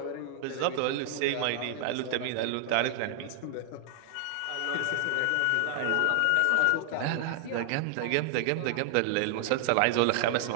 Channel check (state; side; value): different; both; correlation 0.00